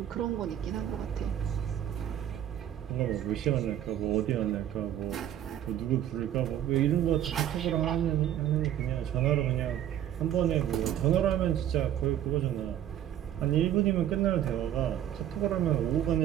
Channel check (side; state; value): left; quieter; 11.1 dB